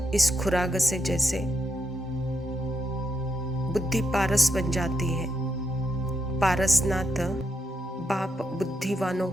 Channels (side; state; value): both; normal; correlation 0.81